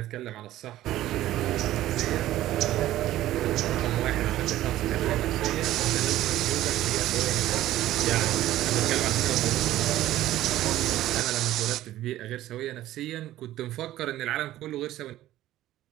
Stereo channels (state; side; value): quieter; left; 14.4 dB